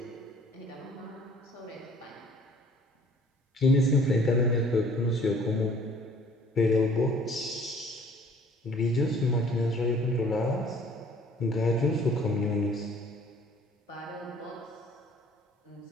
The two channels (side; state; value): both; normal; correlation 0.54